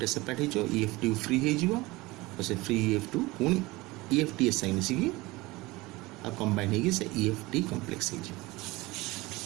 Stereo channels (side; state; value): left; quieter; 21.4 dB